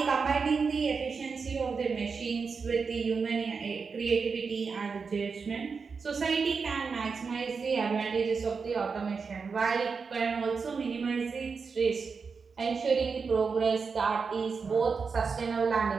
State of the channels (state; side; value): quieter; left; 5.2 dB